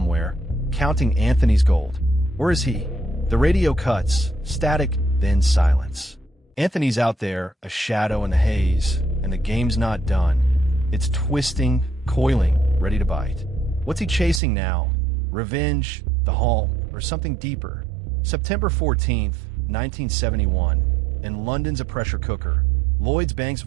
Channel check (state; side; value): drops out; left; at 14.4 s